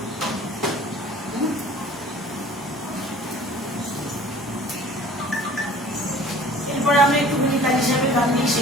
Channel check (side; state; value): both; normal; correlation 0.47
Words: এরপরে আমরা একটুখানি কাজ হিসাবে গান দিয়ে